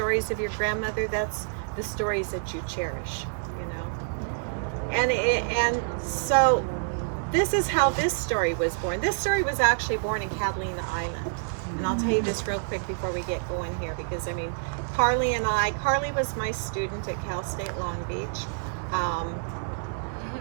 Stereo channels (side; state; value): left; silent; 60 dB below the other